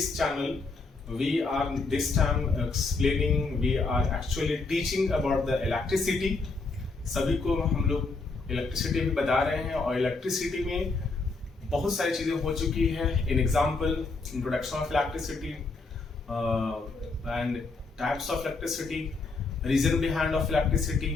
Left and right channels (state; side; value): quieter; right; 3.9 dB